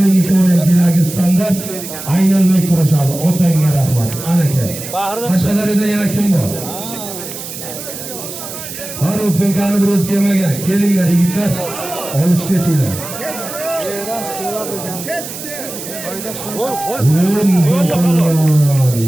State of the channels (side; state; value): right; noise; hiss, 10 dB below the sound